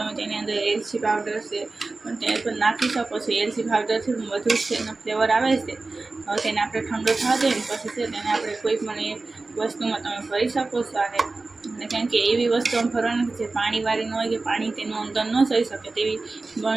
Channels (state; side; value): quieter; left; 3.5 dB